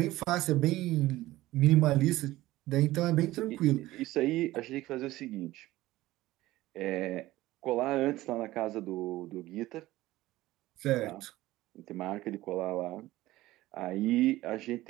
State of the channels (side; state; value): left; quieter; 17.0 dB